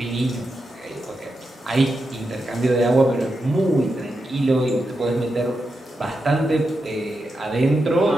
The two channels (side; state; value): both; normal; correlation 0.87